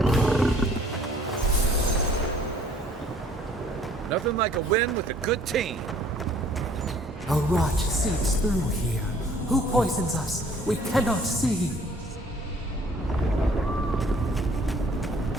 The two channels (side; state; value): both; normal; correlation 0.57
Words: Nothing like a win with a good team. A rot seeps through here. Who poisons us? We cannot see.